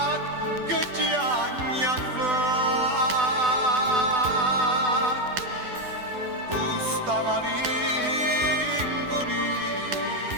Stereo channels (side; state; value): left; late; 12 ms